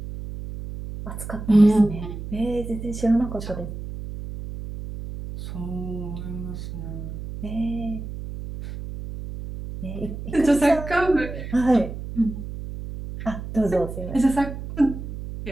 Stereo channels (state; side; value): noise; right; hum, 9 dB below the sound